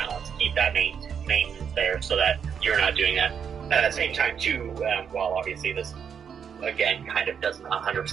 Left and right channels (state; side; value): quieter; left; 7.4 dB